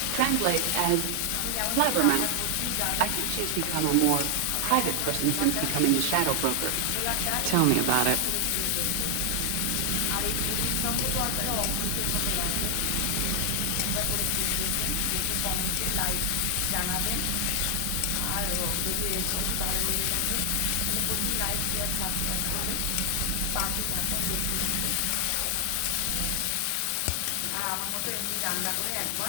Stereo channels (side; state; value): both; different; correlation 0.00